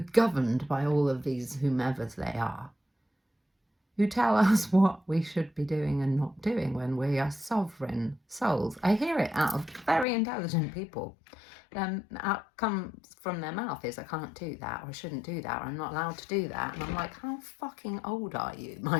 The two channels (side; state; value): right; drops out; at 10.1 s